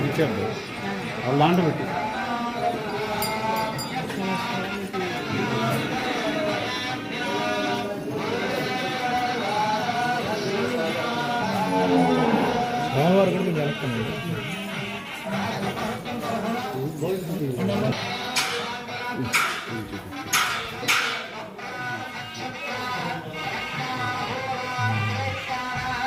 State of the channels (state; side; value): identical; both; correlation 1.00